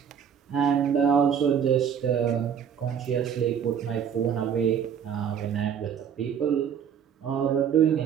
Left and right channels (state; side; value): quieter; left; 8.0 dB